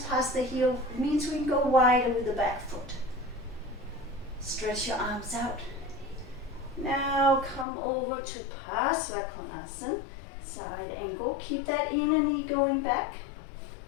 the heel, it means we can go wider with the back foot. Stretch your arms out. Now come over to Pasvakonasana, side angle. Keep that inner knee going back.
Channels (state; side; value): drops out; right; at 7.7 s